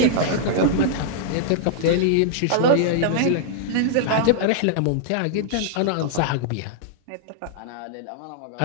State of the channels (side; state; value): both; different; correlation -0.01